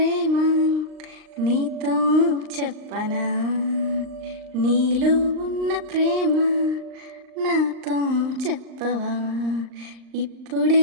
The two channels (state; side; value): late; left; 39 ms